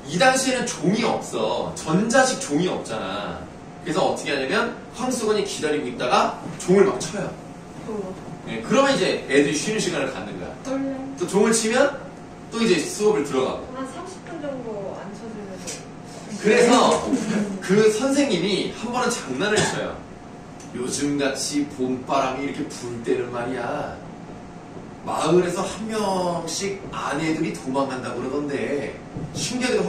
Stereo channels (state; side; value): identical; both; correlation 1.00